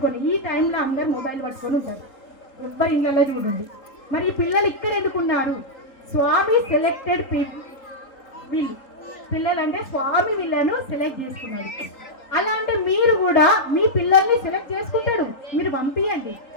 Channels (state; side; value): late; right; 3.8 ms